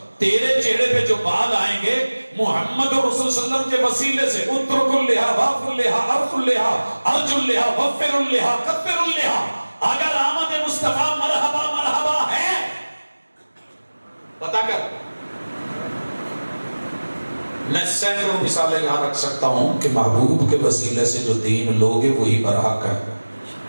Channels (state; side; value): inverted; both; correlation -1.00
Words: تیرے چہرے پہ جو بال آئیں گے محمد رسول صلی اللہ علیہ وسلم کے وسیلے سے. اترک اللحا واف اللحا عرف اللحا ارج اللحا وفر اللحا کفر اللحا. اگر آمد مصطفیٰ مرحبا مرحبا ہے پتا کر. میں سینکڑوں مثالیں یہاں رکھ سکتا ہوں کہ محبوب کے وسیلے سے جو دین لوگے وہی برحق ہے.